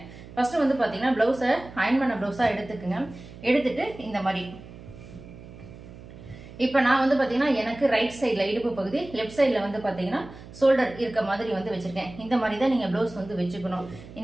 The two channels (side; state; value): right; noise; hum, 17 dB below the sound